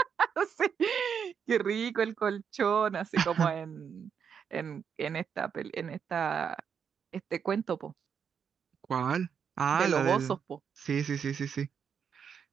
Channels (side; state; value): left; quieter; 7.2 dB